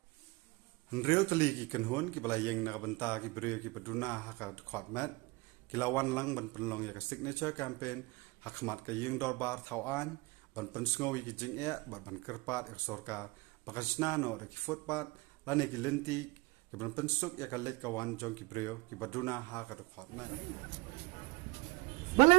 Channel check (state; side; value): quieter; left; 23.9 dB